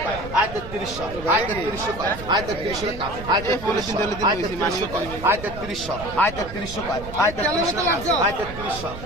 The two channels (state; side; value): noise; right; rumble, 11 dB below the sound